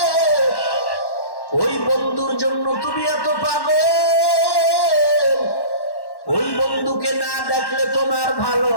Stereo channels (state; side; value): late; right; 1.1 ms